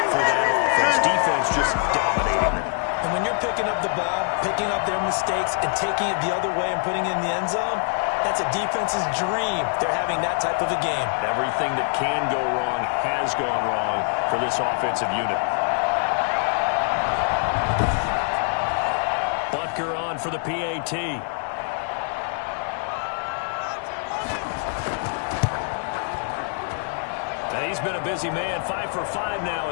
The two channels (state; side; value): silent; right; 58 dB below the other